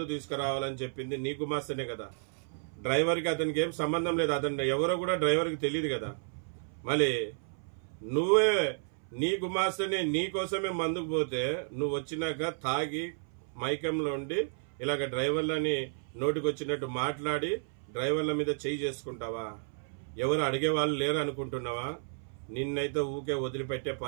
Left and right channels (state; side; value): silent; left; 56 dB below the other